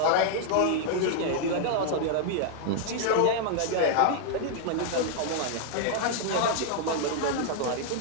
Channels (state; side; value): different; both; correlation 0.00